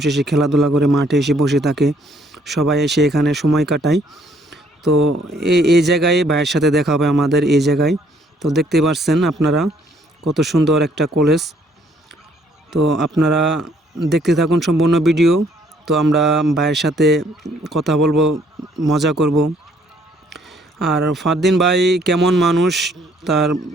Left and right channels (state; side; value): normal; both; correlation 0.65